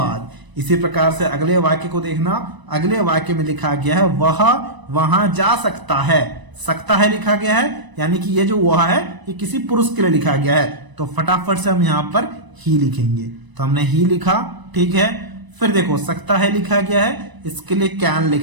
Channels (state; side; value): late; left; 1.0 ms